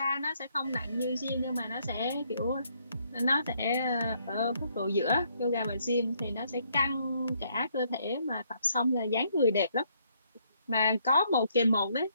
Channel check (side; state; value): both; inverted; correlation -0.70